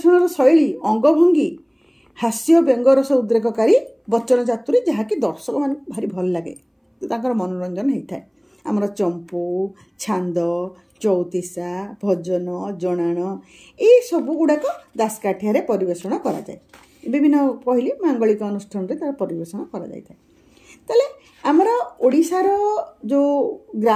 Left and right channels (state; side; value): identical; both; correlation 1.00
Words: शैली अंगभंगी हास्य व्यंगरस उद्रेककारी वचन चातुरी जहाँकि दर्शक मान भारी भल लगे तांकर मनोरंजन होता है आमर चंपू छांद चौतीसा भजन जनाण ये सब गुड़ाक दासकाठिया परिवेषण करा जाए विभिन्न कहली मांगलिक अनुष्ठान रे तार परिवेषण करा जाय थाए ताले आमर ओडिशार जो